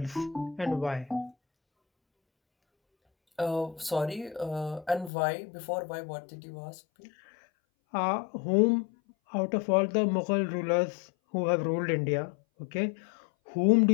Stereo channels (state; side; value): drops out; right; at 5.1 s